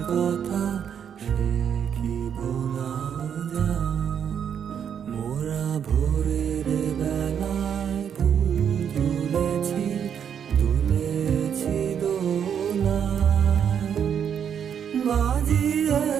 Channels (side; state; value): left; quieter; 8.2 dB